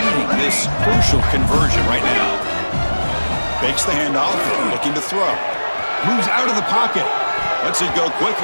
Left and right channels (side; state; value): both; inverted; correlation -1.00